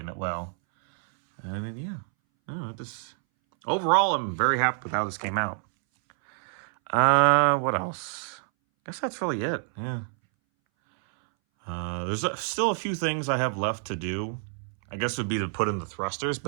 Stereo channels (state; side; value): silent; left; 60 dB below the other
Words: well. I mean, yeah. Overall, I'm very happy with how this came out. What else? I guess that's really it, yeah. There's still a few things I have left to do. I guess it would be to put in the thrusters,